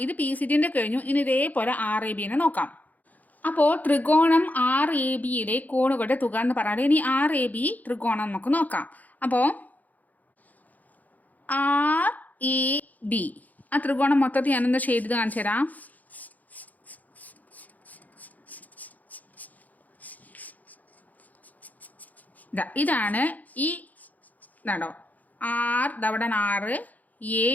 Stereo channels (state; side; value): late; right; 0.080 ms